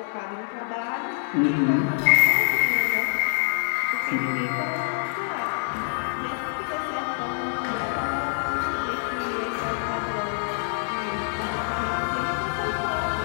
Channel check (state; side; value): silent; right; 60 dB below the other